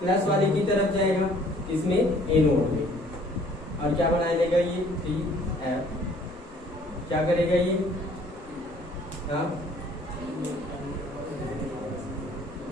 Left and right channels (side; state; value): both; normal; correlation 0.57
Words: वाले की तरफ जाएगा, इसमें एनोड में। और क्या बना लेगा? ये 3F। क्या करेगा ये? हाँ,